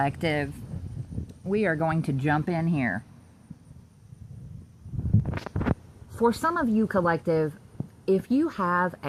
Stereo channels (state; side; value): identical; both; correlation 1.00